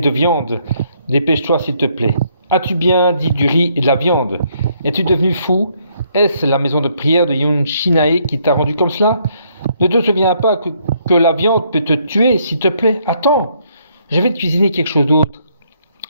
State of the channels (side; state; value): both; inverted; correlation -0.70